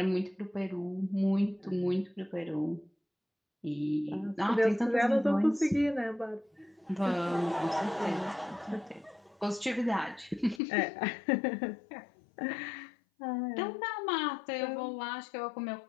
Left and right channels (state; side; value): drops out; right; at 10.6 s